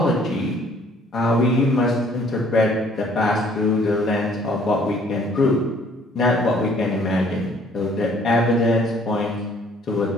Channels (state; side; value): normal; both; correlation 0.59